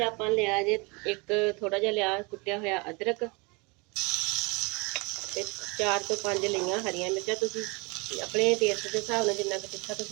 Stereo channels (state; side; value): quieter; left; 28.5 dB